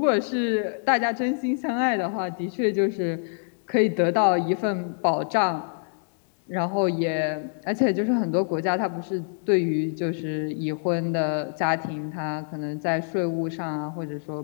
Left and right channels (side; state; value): right; silent; digital silence